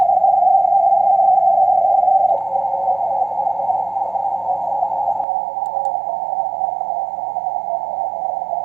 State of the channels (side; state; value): left; drops out; at 5.2 s